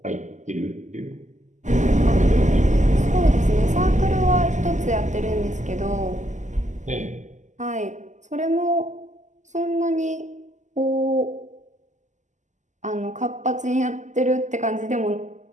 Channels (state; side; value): late; left; 0.35 ms